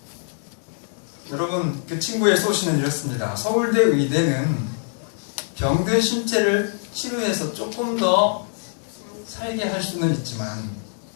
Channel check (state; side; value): silent; right; digital silence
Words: 여러분, 그 친구의 소신은 이렇습니다. 서울대 의대는 병든 신체를 치료해서 조금 더 살게 할 수는 있지만